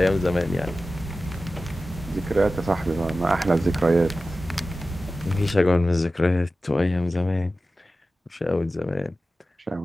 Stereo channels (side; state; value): both; normal; correlation 0.94